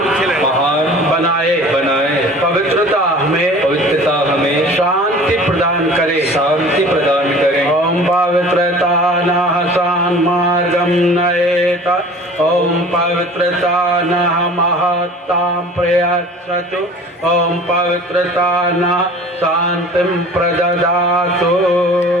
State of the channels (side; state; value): both; normal; correlation 0.44